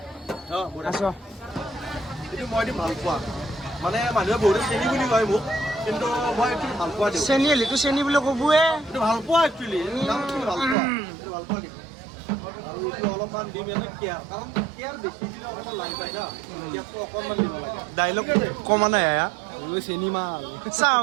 আছ এইটো মই ভাল পোৱা মানে মানুহে বহুত চেনি বুলি কয় মোক কিন্তু মই এইটো ভাল পোৱা দিওঁ চেনি হ'লেতো চেনি বুলি ক'বয়ে এইটো ভাল পোৱা একচুৱেলি ভাল পোৱা এইটো ভাল পোৱা দিম আৰু এইটো অলপমান দিম এনে কেয়াৰ কাৰণ কেয়াৰ বেছি দিলে অকণমান লাগি যায় না কেয়াৰটো অকণমান দিব লাগে ডাইলগ কমা নাই আয়া চেনি মাল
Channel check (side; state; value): left; drops out; at 10.8 s